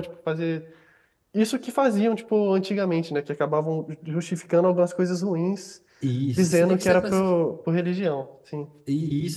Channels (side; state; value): both; identical; correlation 1.00